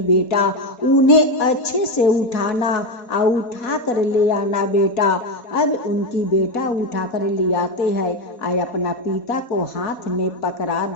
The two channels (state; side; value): late; right; 4.2 ms